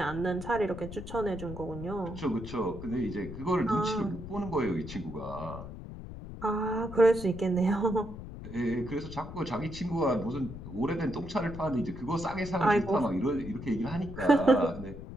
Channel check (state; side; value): noise; left; rumble, 11 dB below the sound